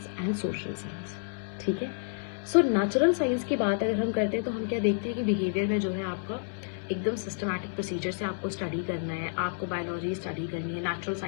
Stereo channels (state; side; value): silent; right; 58 dB below the other